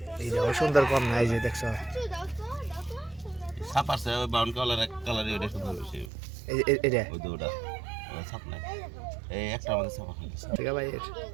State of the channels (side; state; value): left; drops out; at 6.1 s